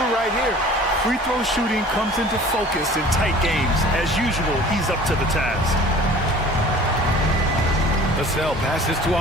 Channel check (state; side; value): normal; both; correlation 0.46